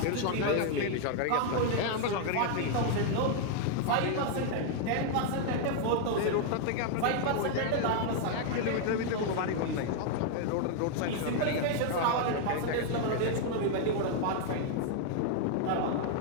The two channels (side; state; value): both; different; correlation 0.00